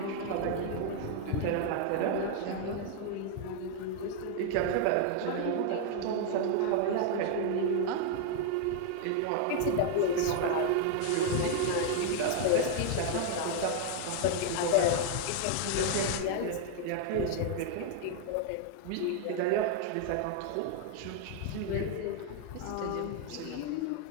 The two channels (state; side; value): different; both; correlation 0.00